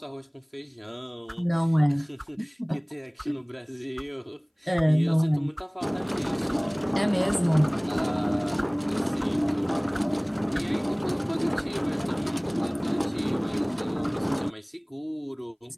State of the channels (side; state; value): both; identical; correlation 1.00